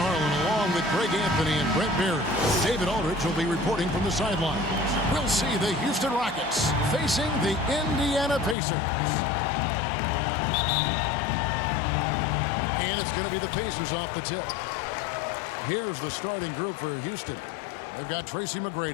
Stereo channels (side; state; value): right; drops out; at 8.6 s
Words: along with Greg Anthony and Brent Barry. David Aldridge will be reporting from the sidelines. We'll see the Houston Rockets facing the Indiana Pacers. And it's going to be the Pacers off the tip. Here's the starting group for Houston. They've got Tracy